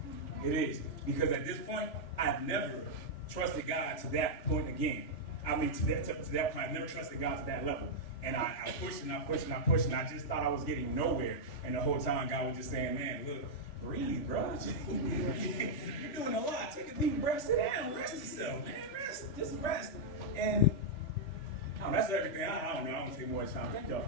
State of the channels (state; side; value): late; right; 3.4 ms